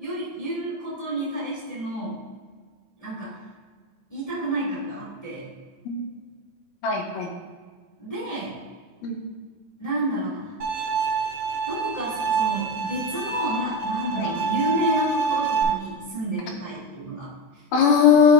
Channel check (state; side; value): normal; both; correlation 0.16